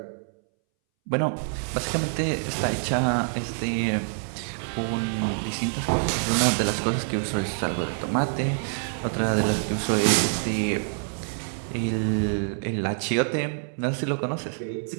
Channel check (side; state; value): left; silent; 61 dB below the other